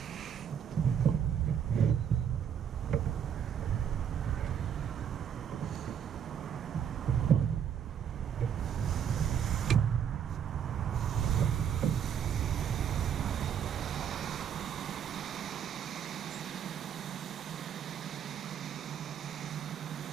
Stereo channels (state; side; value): quieter; left; 8.4 dB